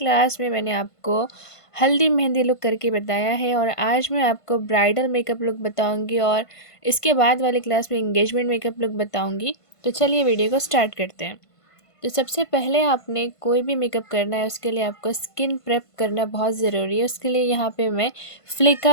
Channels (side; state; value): right; late; 1.5 ms